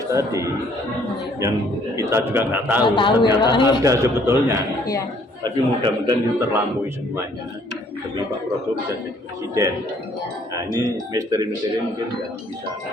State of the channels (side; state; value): both; normal; correlation 0.62